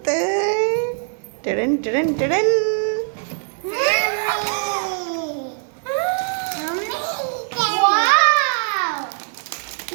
Tadam, tadam, tadam. Wow!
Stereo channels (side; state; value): left; silent; digital silence